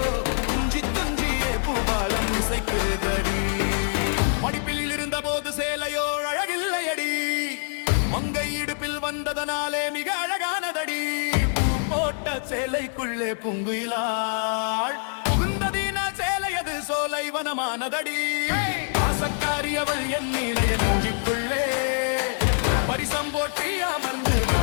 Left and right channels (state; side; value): silent; right; digital silence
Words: துஞ்சி துஞ்சியே பூபாலம் இசைக்குதடி. படிப்பில் இருந்த போது சேலையோ அழகில்லையடி. மங்கை இடுப்பில் வந்ததனாலே மிக அழகானதடி. பூ போட்ட சேலைக்குள்ளே பூங்குயிலாள் புகுந்ததின சேலையது சோலை வனமானதடி. ஆசக்காரி அவள் என் நீலைய நெஞ்சுக்குள்ளே பரிசம் போட்டி அமர்ந்து